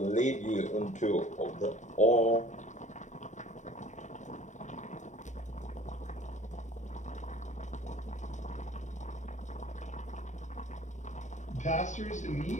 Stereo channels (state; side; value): late; right; 0.35 ms